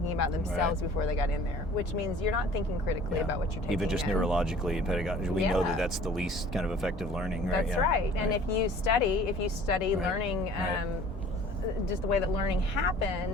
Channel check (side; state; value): both; normal; correlation 0.49